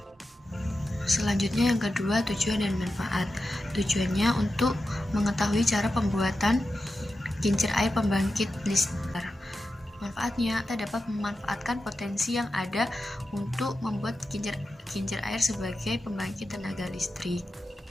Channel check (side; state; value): both; normal; correlation 0.91